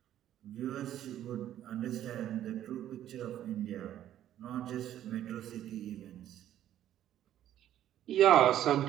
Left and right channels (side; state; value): left; quieter; 11.7 dB